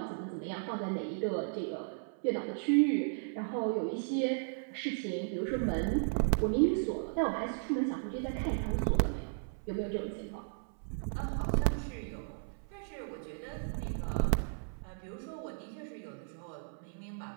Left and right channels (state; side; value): silent; left; 54 dB below the other